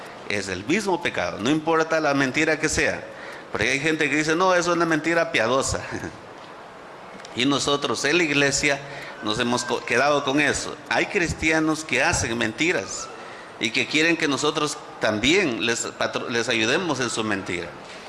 Es el mismo pecado, no importa la mentira que sea. Porque hay gente que dice: no, eso es una mentira piadosa. Y nosotros en la iglesia nos hemos quedado con eso. Hay cristianos que hacen mentiras y que quieren que nosotros también les ayudemos en su mentira.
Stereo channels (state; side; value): identical; both; correlation 1.00